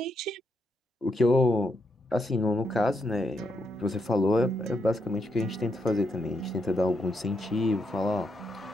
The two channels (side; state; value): both; normal; correlation 0.80